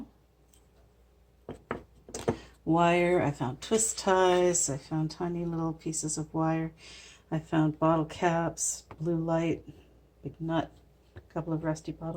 Wire, I found twist ties, I found tiny little pieces of wire, I found bottle caps, blue light, big nut, a couple of rusty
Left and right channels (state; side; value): identical; both; correlation 1.00